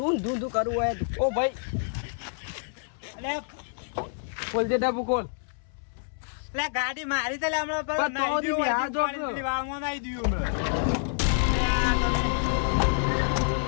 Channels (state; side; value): silent; right; 60 dB below the other